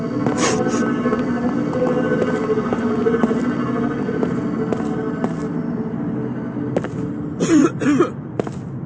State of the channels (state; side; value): identical; both; correlation 1.00